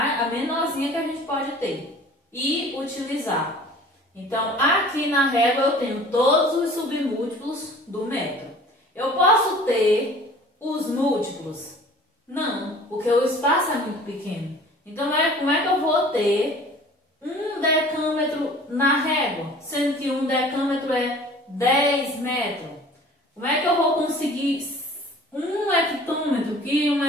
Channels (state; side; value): normal; both; correlation 0.47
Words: menorzinha que a gente pode ter e utilizar. Então, aqui na régua eu tenho todos os submúltiplos do metro. Eu posso ter os múltiplos? Não, porque o espaço é muito pequeno. Então, como é que eu vou ter 1 decâmetro na régua, sendo que 1 decâmetro é 10 metros? Como é que eu vou conseguir 1 hectômetro, que 1